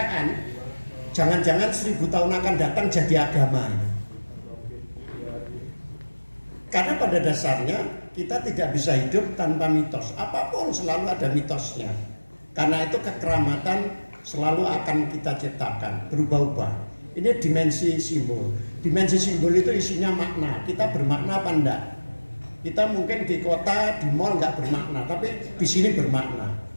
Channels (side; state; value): both; inverted; correlation -1.00